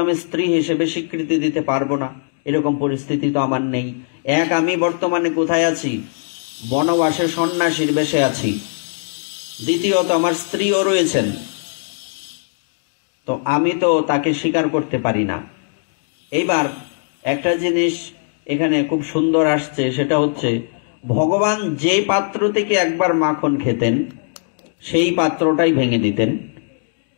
আমি স্ত্রী হিসেবে স্বীকৃতি দিতে পারবো না, এরকম পরিস্থিতি তো আমার নেই। এক, আমি বর্তমানে কোথায় আছি? বনবাসে সন্ন্যাসীর বেশে আছি। দ্বিতীয়ত আমার স্ত্রীও রয়েছেন, তো আমি তো তাকে স্বীকার করতে পারি না। এইবার একটা জিনিস এখানে খুব সুন্দর আসছে, সেটা হচ্ছে ভগবান যে পাত্র থেকে একবার মাখন খেতেন, সেই পাত্রটাই ভেঙে দিতেন।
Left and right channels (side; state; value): right; silent; digital silence